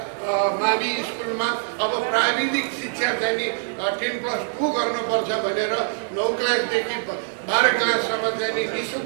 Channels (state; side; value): silent; left; digital silence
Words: मावि स्कुलमा अब प्राविधिक शिक्षा चाहिँ नि 10+2 गर्नुपर्छ भनेर 9 क्लासदेखि 12 क्लाससम्म चाहिँ नि